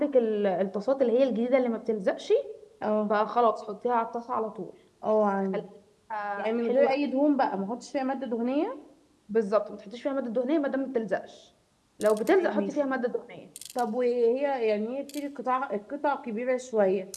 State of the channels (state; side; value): identical; both; correlation 1.00